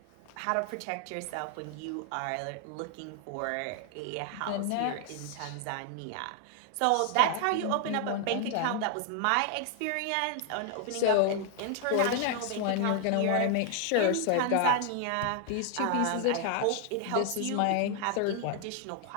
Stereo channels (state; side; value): different; both; correlation 0.00